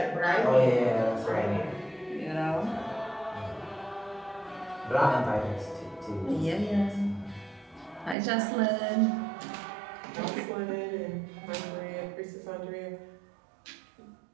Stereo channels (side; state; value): left; drops out; at 8.2 s